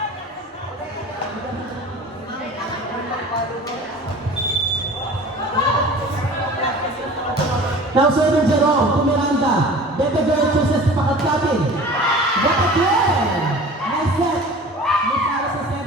Now serving Jerome to Miranda. Beto Girl chooses Pakatkatin. What a play! Nice set. Miss Alice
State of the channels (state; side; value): normal; both; correlation 0.41